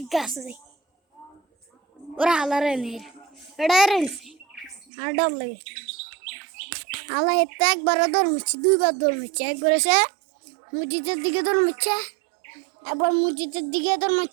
গাছে ওরা হালারে নেই এটা রেলছে আর ডর লাগে হালা এতে একবারও দৌড়মিচ্ছে দুইবার দৌড়মিচ্ছে একবার এসে মসজিদের দিকে দৌড়মিচ্ছে একবার মসজিদের দিকে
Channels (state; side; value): drops out; left; at 4.9 s